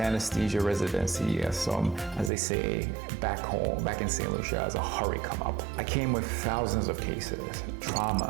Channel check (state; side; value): drops out; left; at 2.3 s